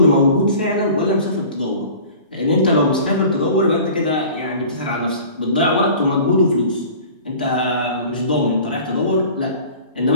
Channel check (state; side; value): inverted; both; correlation -0.43